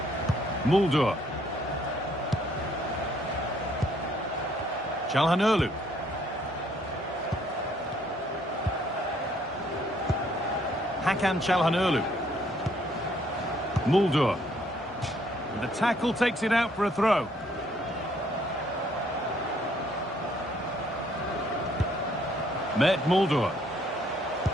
Mulder. KyleMockeXP. KyleMockeXP. Mulder. And the tackle takes it out for a throw. Mulder.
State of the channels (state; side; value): normal; both; correlation 0.66